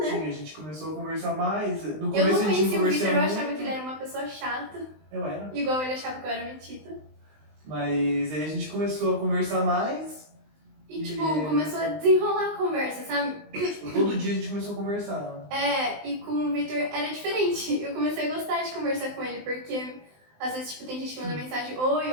Sim, a gente começou a conversar mais. No eu começo não conhecia o Victor, eu muito. achava que ele era uma pessoa chata. Eu era. Igual ele achava que eu era metida. Mas aí a gente começou a conversar mais. E tipo, começou a desenrolar a conversa, sabe? Tipo, todo dia a gente começou a conversar. E com o Victor era diferente. Eu comecei a gostar de conversar com ele, porque às vezes tipo, tem gente que manda mensagem,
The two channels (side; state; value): left; late; 19 ms